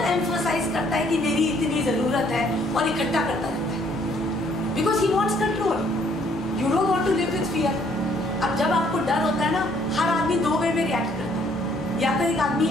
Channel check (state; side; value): normal; both; correlation 0.64